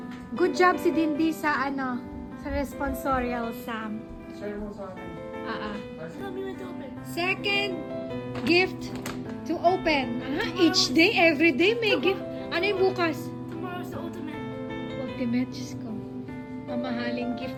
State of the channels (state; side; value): identical; both; correlation 1.00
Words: good job si Dindy sa sa responsorial, Sam. Share mo sa akin. Second gift to open. Each day, every day may gift. Ano yung bukas? Tomorrow's the ultimate. Ultimate, Diyos ko. Mamahaling